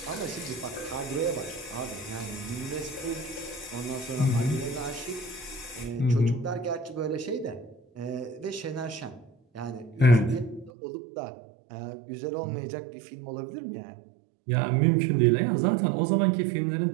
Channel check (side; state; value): left; drops out; at 10.7 s